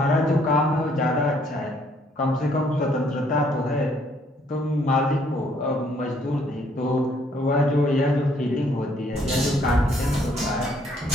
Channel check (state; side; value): normal; both; correlation 0.66